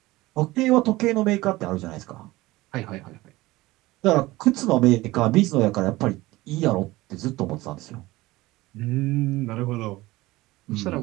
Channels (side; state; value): left; quieter; 19.2 dB